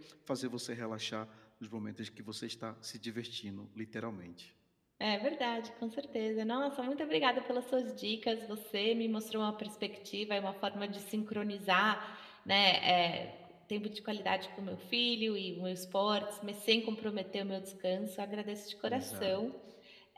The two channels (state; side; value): identical; both; correlation 1.00